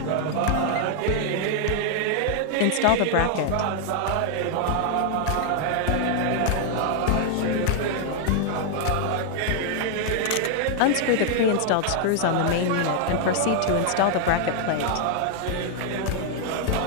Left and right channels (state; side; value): different; both; correlation 0.00